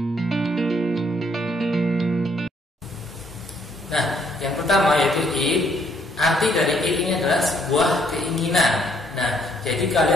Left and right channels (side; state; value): both; normal; correlation 0.68